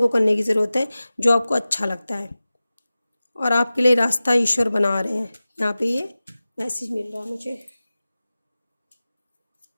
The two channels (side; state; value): both; inverted; correlation -0.96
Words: करने की ज़रूरत है जो आपको अच्छा लगता है, और आपके लिए रास्ता ईश्वर बना रहे हैं। यहाँ पे ये मैसेज मिल रहा है मुझे।